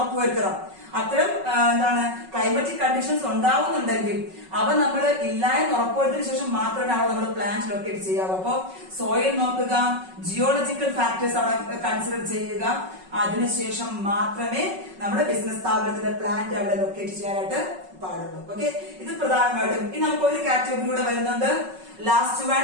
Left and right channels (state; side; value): late; left; 5.4 ms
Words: അത്തരം എന്താണ് ക്ലൈമറ്റിക് കണ്ടീഷൻസ് ഉണ്ടാവുന്നുണ്ടെങ്കിൽ അവ നമ്മൾ ഇല്ല എന്ന് ഉറപ്പുവരുത്തിയതിനു ശേഷം മാത്രമേ അവ നമ്മൾ പ്ലാന്റ് ലൊക്കേറ്റ് ചെയ്യാവൂ. അപ്പോ സോയിൽ നോക്കുക, ജിയോളജിക്കൽ ഫാക്ടേഴ്സ് അവിടെ കൺസിഡർ ചെയ്യുക, അതിനുശേഷം മാത്രമേ നമ്മുടെ ബിസിനസ് സ്ഥാപനത്തിന്റെ പ്ലാന്റ് അവിടെ ലൊക്കേറ്റ് ചെയ്യാനായിട്ട് പാടുള്ളൂ. ഓക്കെ, ഇത് പ്രധാനമായിട്ടും. ഇനി നമുക്ക് ഒരു കാറ്റഗറി കൂടെ വരുന്നുണ്ട്, last